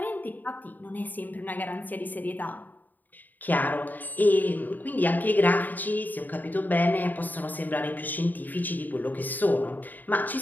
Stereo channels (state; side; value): late; right; 0.086 ms